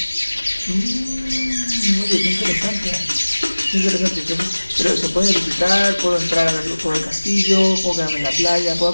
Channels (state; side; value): inverted; both; correlation -1.00